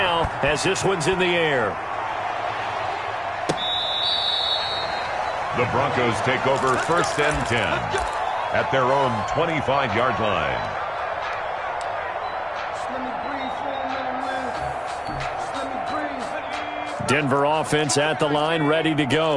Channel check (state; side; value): identical; both; correlation 1.00